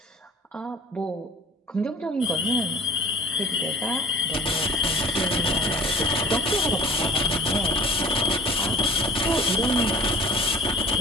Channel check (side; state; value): both; normal; correlation 0.46